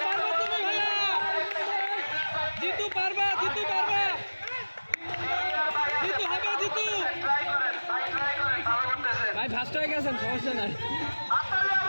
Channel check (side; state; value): both; inverted; correlation -1.00